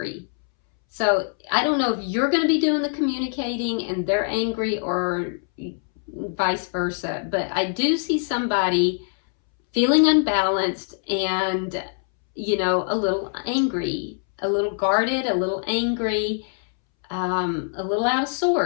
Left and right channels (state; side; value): silent; right; 63 dB below the other